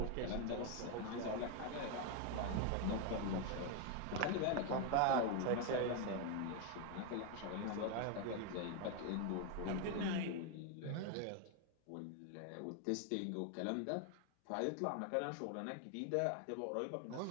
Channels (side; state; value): both; different; correlation 0.01